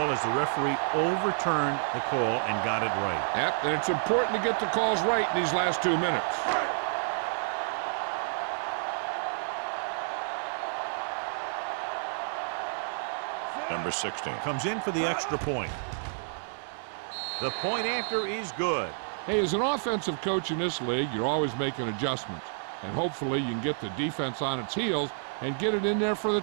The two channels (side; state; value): left; silent; digital silence